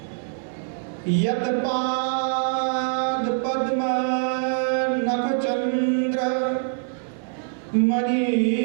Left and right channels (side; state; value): left; silent; digital silence